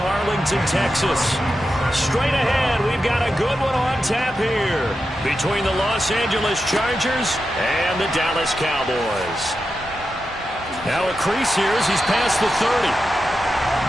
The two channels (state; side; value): normal; both; correlation 0.89